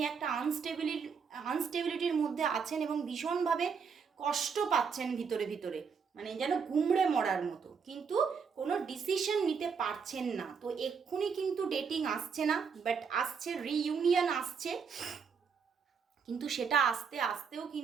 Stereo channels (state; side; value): quieter; left; 6.1 dB